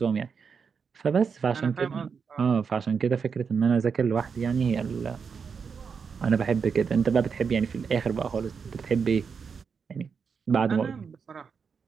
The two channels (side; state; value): left; quieter; 6.0 dB